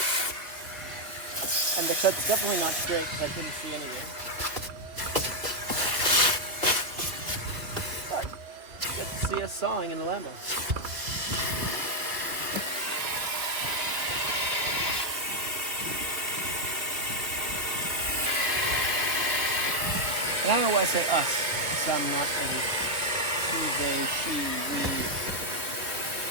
and the cut's definitely not straight because I couldn't see anything. But you get to see us sawing in a Lambo. And I don't know why I say us, because I'm not a he, they, she, we.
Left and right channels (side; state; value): left; late; 2.7 ms